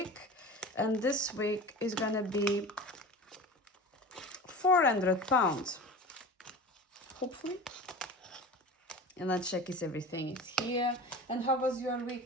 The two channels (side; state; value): both; normal; correlation 0.34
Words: And this week is gonna be £400, hopefully. And let's check if everything is here. And how was your